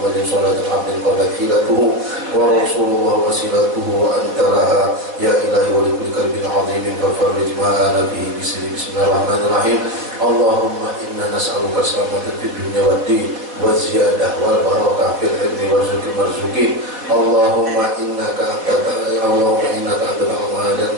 sallallahu alaihi wa sallam hilatuhu wa rasulullah wasilatuhu wa anta laha ya ilahi wa likulli qalbin azimin fafarrij ma'ana fi bismillahirrahmanirrahim. Allahumma inna nas'aluka salamatan fid dunya wad din wa ziyadah wal barakah fil ilmi warzuqil marzuqin. Allahumma innaka anta al-Mahadan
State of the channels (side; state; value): left; late; 4.2 ms